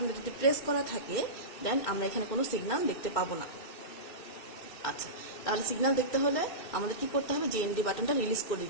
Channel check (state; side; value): late; right; 2.6 ms